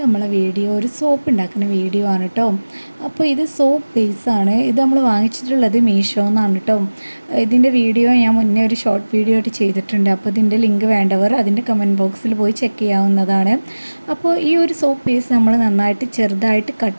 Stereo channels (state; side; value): inverted; both; correlation -1.00